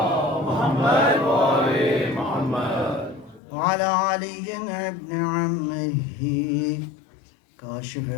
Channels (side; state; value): right; drops out; at 3.4 s